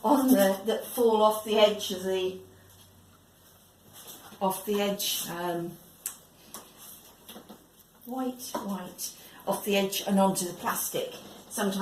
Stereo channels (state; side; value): identical; both; correlation 1.00